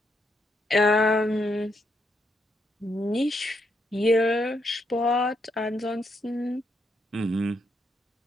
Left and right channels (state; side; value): normal; both; correlation 0.78